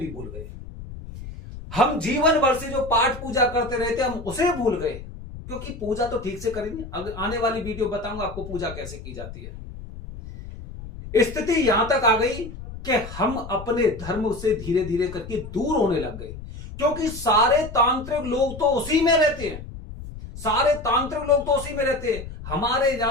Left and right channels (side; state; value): left; noise; rumble, 12 dB below the sound